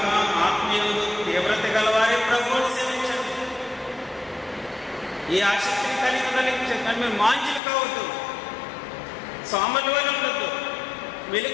ఆత్మీయులు తీవ్రత గలవారే ప్రభువును సేవించండి. ఈ ఆసక్తిని కలిగి చెప్పండి. మీరు మాంచులు కావద్దు, సోమరుల వల్ల ఉండొద్దు,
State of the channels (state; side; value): drops out; right; at 7.6 s